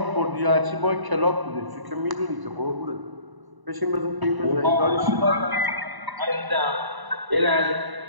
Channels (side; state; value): left; late; 1.0 ms